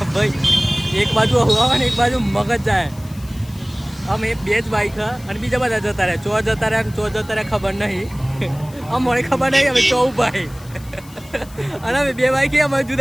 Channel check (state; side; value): noise; left; hiss, 22 dB below the sound